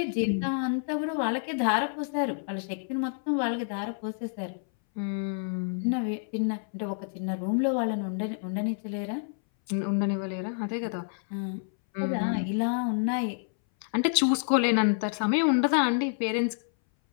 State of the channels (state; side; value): silent; right; 59 dB below the other